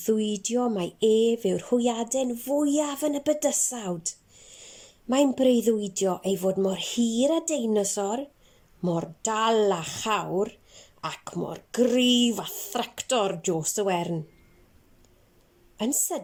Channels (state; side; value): identical; both; correlation 1.00